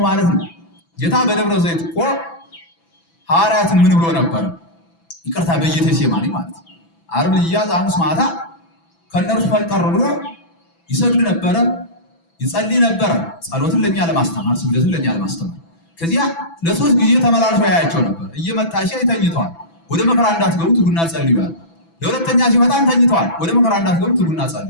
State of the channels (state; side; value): late; right; 6.0 ms